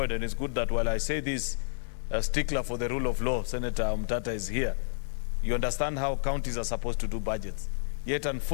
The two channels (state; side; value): silent; right; digital silence